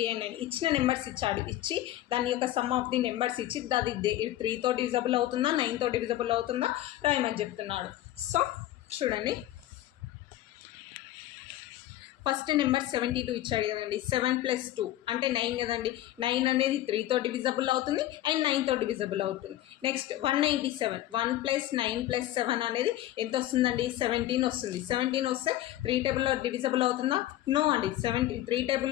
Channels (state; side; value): quieter; right; 14.2 dB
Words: and 9. ఇచ్చిన నెంబర్స్ ఇచ్చి దాని యొక్క సమ్ ఆఫ్ ది నెంబర్స్ ఇచ్చి అది 3తో డివిజబుల్ అవుతుందా 9తో డివిజబుల్ అవుతుందా రాయమని చెప్తున్నాడు. సో చూడండి, ఫస్ట్ నెంబర్ 72 ఇచ్చాడు కదండి. 7 + 2 అంటే 9 కదండి. 9 అనేది 3తో డివిజబుల్ అవుతుంది అండ్ 9తో డివిజబుల్ అవుతుంది. నెక్స్ట్ 197, 1 + 9 + 7 అనేది ఎంత వస్తుందండి? 17 వస్తుంది. 17 వస్తే 3 టేబుల్లో డివిజబుల్ అవుతుందా? నో అండి. 3